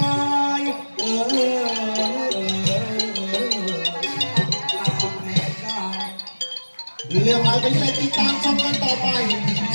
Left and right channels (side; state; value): both; inverted; correlation -1.00